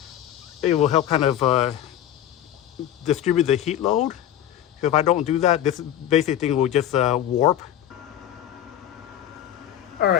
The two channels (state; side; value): quieter; right; 11.3 dB